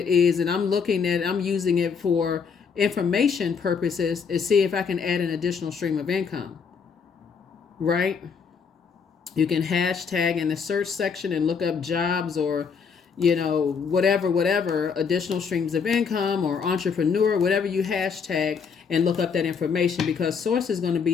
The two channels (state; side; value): quieter; right; 6.0 dB